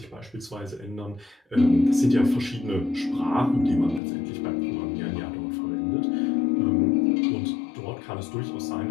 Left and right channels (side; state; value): right; drops out; at 4.0 s